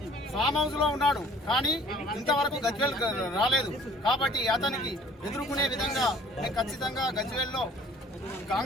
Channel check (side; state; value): both; normal; correlation 0.53